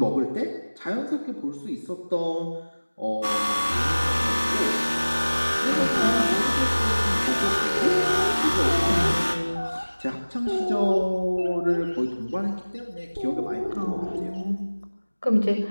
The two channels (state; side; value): inverted; both; correlation -1.00